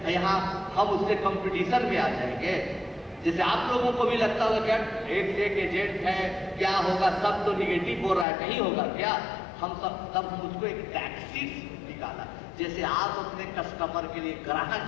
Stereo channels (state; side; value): drops out; right; at 8.2 s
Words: यहाँ हम उससे कंपटीशन में आ जाएंगे। जैसे आप लोगों को भी लगता होगा क्या एक से एक एजेंट है, क्या होगा, सब तो निगेटिव बोल रहा है, नहीं होगा क्या? हम सब उसको एक टैक्टिक्स निकाला। जैसे आप अपने कस्टमर के लिए, ग्राहक